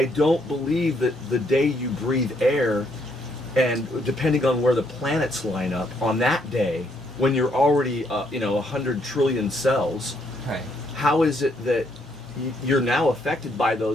don't believe that the day you breathe air, and depending on where the planets line up on that day, when you're already 100 trillion cells, how is it that you're now affected by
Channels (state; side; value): normal; both; correlation 0.72